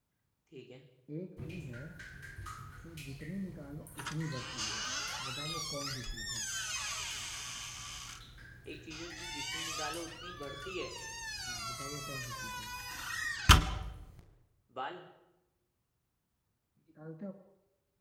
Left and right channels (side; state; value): both; identical; correlation 1.00